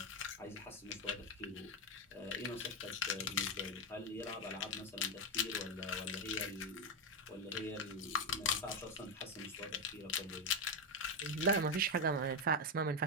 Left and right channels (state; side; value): normal; both; correlation 0.07